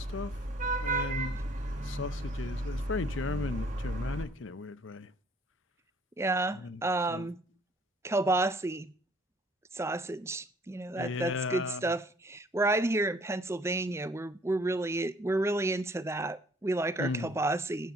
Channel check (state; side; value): normal; both; correlation 0.59